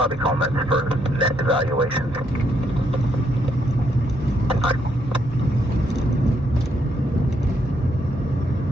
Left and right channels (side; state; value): both; normal; correlation 0.75